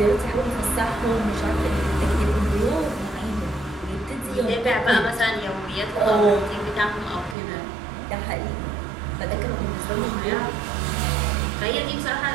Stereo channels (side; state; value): left; drops out; at 7.4 s